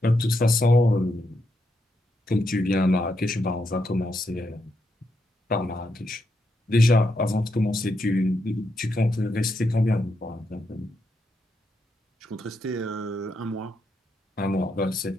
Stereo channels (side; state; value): both; normal; correlation 0.81